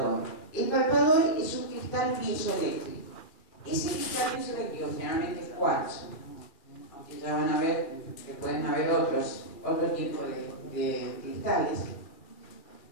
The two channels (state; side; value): late; right; 2.4 ms